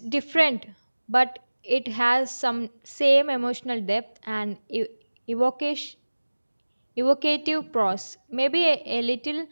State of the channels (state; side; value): inverted; both; correlation -1.00